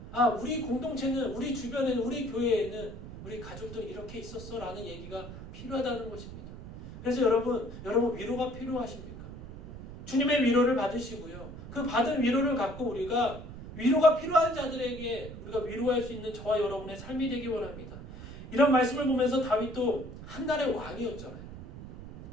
우리 공동체는, 우리 주변에는, 우리 교회에는 우리 가족들이 이렇게 있었어 라는 얘기가 필요하다는 것입니다. 그래서 여러분 위로가 필요하십니까? 주님의 위로를 받으시고요. 그 받은 위로를 갖고 우리가 위로가 필요한 자들에게 우리가 위로할 수 있는 저와 여러분의 삶이 되기 원합니다. 이런 말씀을 보면서 다윗도 한 날의 왕이었잖아요.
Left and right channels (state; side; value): noise; right; rumble, 12 dB below the sound